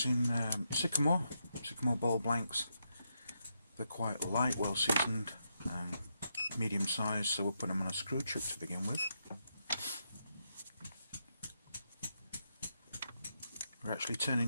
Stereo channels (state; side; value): inverted; both; correlation -0.82